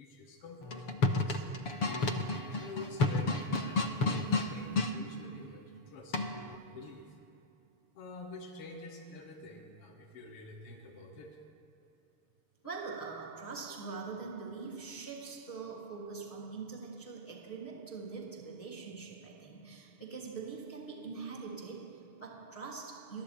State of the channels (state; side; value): late; right; 7.0 ms